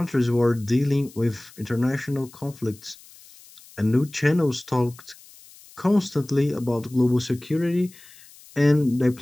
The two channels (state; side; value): noise; left; hiss, 23 dB below the sound